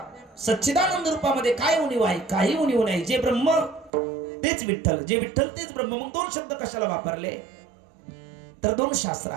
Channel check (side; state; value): left; drops out; at 3.9 s